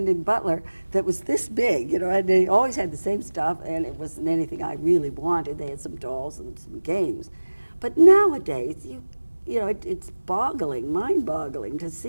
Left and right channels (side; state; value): both; inverted; correlation -1.00